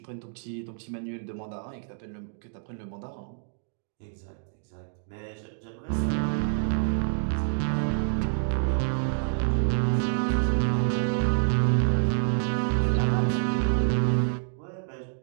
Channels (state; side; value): silent; left; digital silence